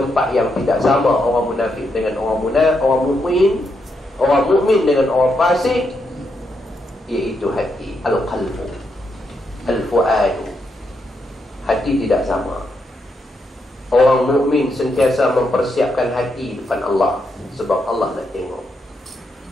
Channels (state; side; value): normal; both; correlation 0.81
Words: yang tidak sama orang munafik dengan orang mukmin, orang mukmin dengan orang fasik, iaitu hati, al-qalbu, al-fuadu. Hati tidak sama. Orang mukmin sentiasa mempersiapkan hati depan Allah, sebab Allah nak tengok.